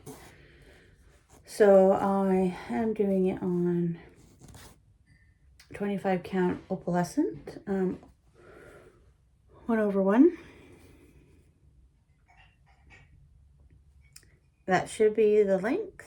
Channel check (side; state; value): both; identical; correlation 1.00